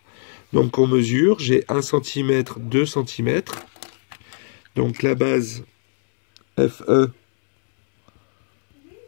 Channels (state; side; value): silent; right; 65 dB below the other